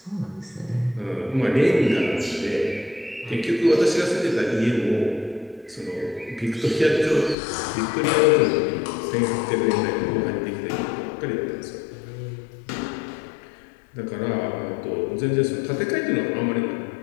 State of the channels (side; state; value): right; drops out; at 7.4 s